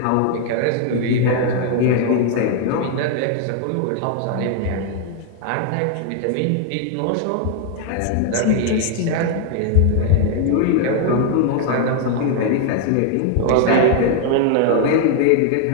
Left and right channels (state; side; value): different; both; correlation 0.00